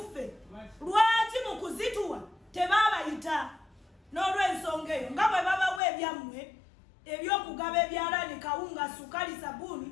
lwaki mu kuzituwa tebaabayita? N'olw'ensonga eyo nga bwe babawa ebyammwe ebyokugaba ebyalaani kawunga sukali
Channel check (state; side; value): drops out; right; at 5.8 s